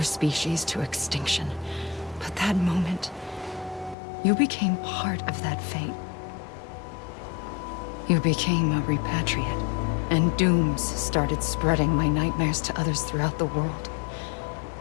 species to extinction. But that moment, you became part of that fate. You became a repatriate, and dooms started spreading my nightmares to others throughout the world.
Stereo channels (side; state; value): right; drops out; at 4.0 s